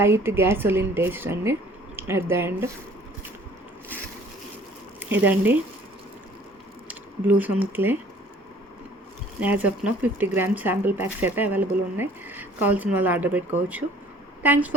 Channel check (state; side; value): normal; both; correlation 0.53